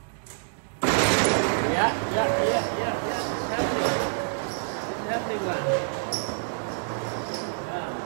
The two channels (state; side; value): silent; left; 60 dB below the other